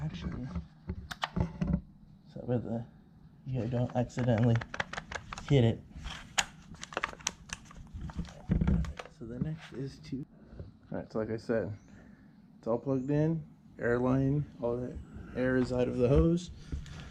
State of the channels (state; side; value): identical; both; correlation 1.00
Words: actually, so that you don't accidentally hit it. So the next is to, alright, so like I said, it's all plugged in, air line, all the air is out of the hose,